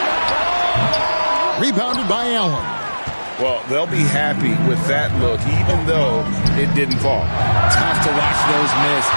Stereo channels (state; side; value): inverted; both; correlation -1.00